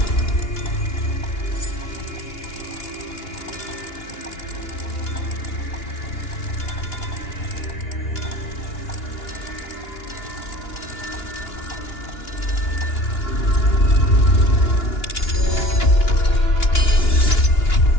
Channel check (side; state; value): right; late; 2.9 ms